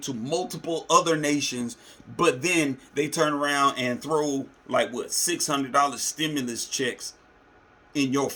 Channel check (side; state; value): both; identical; correlation 1.00